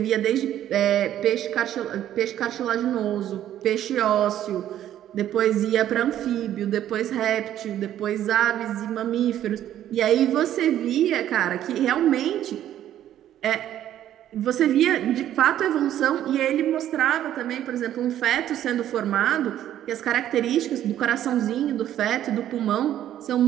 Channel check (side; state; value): left; quieter; 11.6 dB